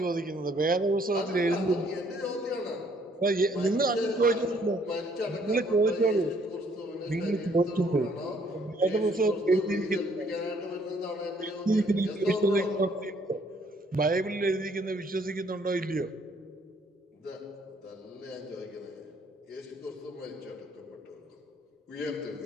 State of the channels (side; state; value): both; normal; correlation 0.64